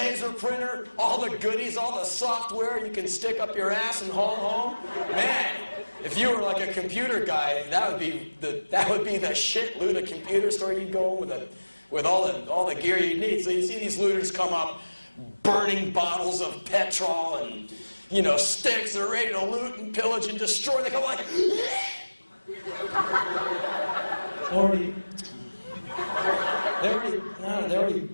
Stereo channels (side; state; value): both; inverted; correlation -1.00